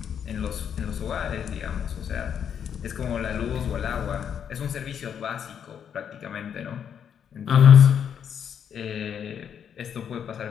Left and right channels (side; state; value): right; quieter; 8.2 dB